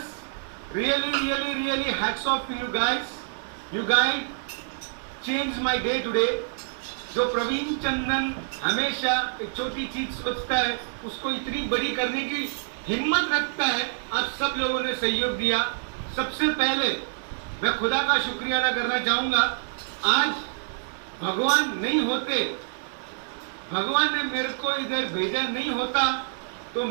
Really hats off to you guys. You guys changed my day today. जो प्रवीण चंदन हमेशा एक छोटी चीज सोचता है उसको इतनी बड़ी करने की हिम्मत रखता है, आप सब लोगों ने सहयोग दिया। सबसे पहले मैं खुदा का शुक्रिया अदा करना चाहूंगा। आज भगवान नहीं होते, भगवान ने मेरे को इधर भेजा नहीं होता तो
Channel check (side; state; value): left; silent; digital silence